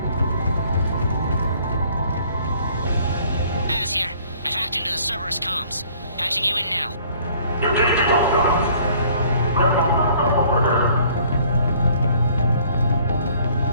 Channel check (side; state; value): both; inverted; correlation -0.57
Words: Az here. I've hacked into the Cerberus comms. Patching you in now.